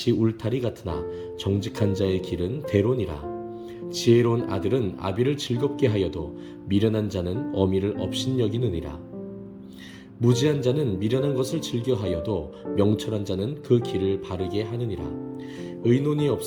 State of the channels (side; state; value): both; identical; correlation 1.00